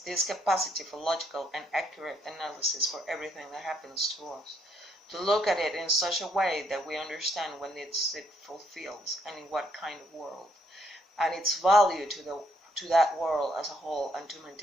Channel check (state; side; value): normal; both; correlation 0.72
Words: this capacity for logical and accurate analysis for everything that happens to us, to look at it in such a way that we understand what needs it fulfills and in what kind of world, and its value to that world as a whole, and to